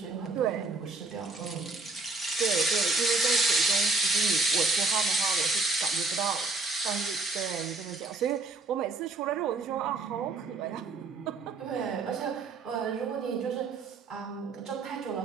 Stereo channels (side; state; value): left; quieter; 3.7 dB